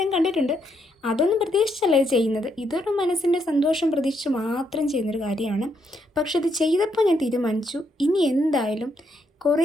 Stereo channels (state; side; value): normal; both; correlation 0.76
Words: കണ്ടിട്ടുണ്ട്. അതൊന്നും പ്രതീക്ഷിച്ചല്ല ഇത് ചെയ്യുന്നത്. ഇതൊരു മനസ്സിൻ്റെ സന്തോഷം പ്രതീക്ഷിച്ച് മാത്രം ചെയ്യുന്നൊരു കാര്യമാണ്. പക്ഷെ ഇത് ചെയ്തപ്പോൾ ഞാൻ തീരുമാനിച്ചു, ഇനി എന്തായാലും